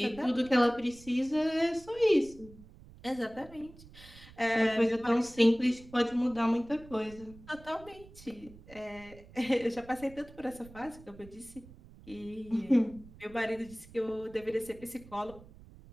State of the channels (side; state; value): right; noise; rumble, 20 dB below the sound